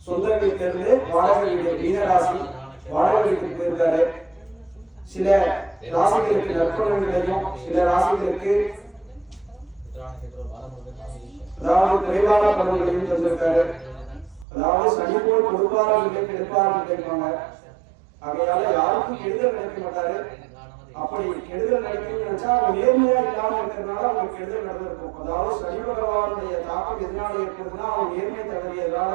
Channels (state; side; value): drops out; left; at 14.5 s